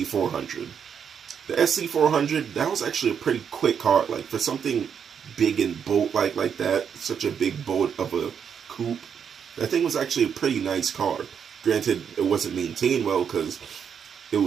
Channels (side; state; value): left; quieter; 7.4 dB